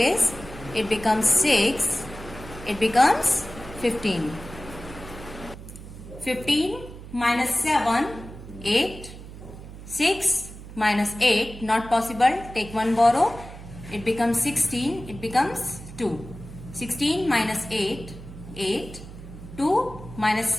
It becomes 6. It becomes 15. 15 minus 7, 8. 6 minus 8, not possible. Take 1 borrow. It becomes 16. It becomes 2. 16 minus 8, 8. 2 minus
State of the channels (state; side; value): noise; right; hum, 14 dB below the sound